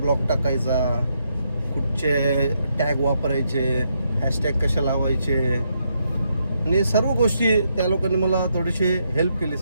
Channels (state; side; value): inverted; both; correlation -0.79